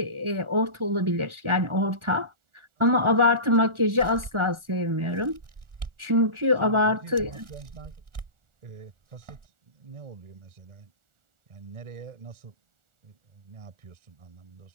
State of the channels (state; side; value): late; left; 1.4 ms